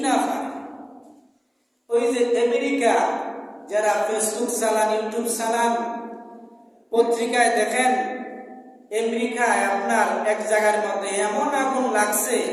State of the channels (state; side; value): identical; both; correlation 1.00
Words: না পারে? ওই যে আমেরিকা, যারা ফেসবুক চালান, ইউটিউব চালান, পত্রিকায় দেখেন, আমেরিকায় আপনার এক জায়গার মধ্যে এমন আগুন লাগছে,